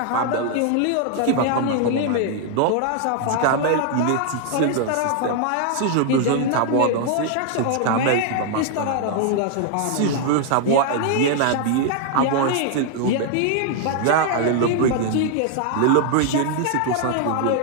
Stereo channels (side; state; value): both; different; correlation 0.00